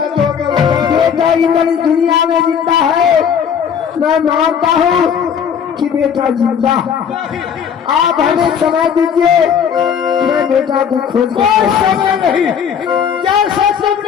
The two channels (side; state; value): right; quieter; 7.6 dB